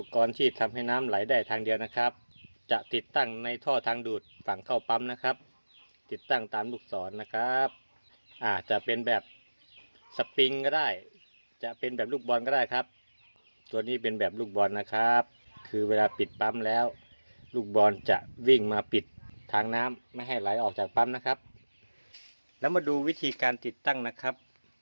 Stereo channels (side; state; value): both; inverted; correlation -1.00